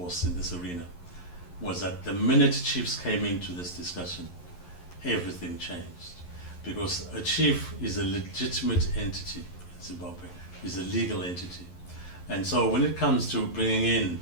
in this arena was that the minute chiefs came into this discussion, everything changed. Because a chief is a legitimate entity in Zimbabwe, is a legal entity. And so when it comes to bringing in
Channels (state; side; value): late; right; 11 ms